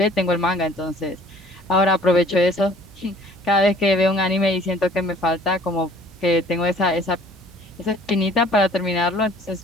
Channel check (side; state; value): right; noise; hum, 26 dB below the sound